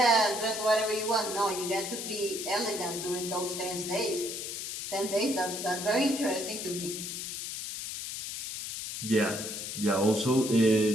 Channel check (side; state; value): left; noise; hiss, 6 dB below the sound